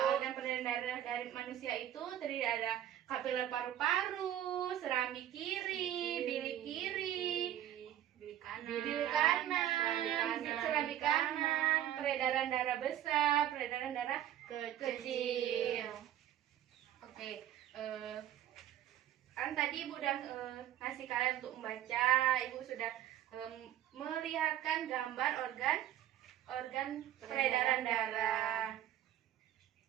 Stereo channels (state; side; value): quieter; left; 11.8 dB